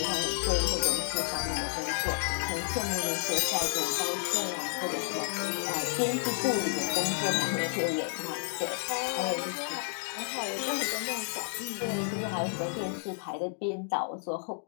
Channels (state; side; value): silent; right; 56 dB below the other